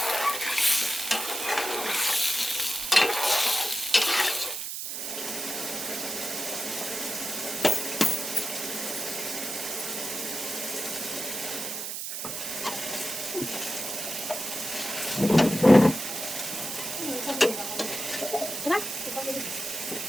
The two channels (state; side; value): noise; right; hiss, 5 dB below the sound